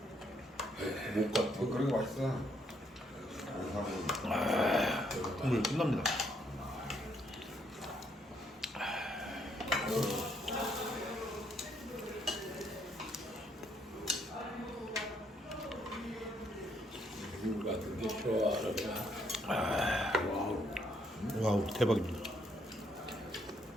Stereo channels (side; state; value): both; normal; correlation 0.71